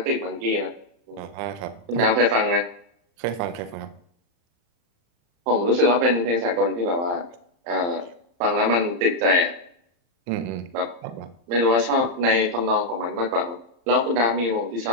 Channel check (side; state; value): left; late; 35 ms